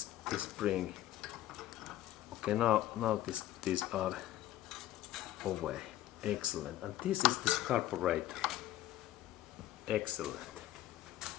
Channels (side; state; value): right; quieter; 14.0 dB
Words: spring. Okay, now these are away. Excellent. And this is this carburetor. Excellent.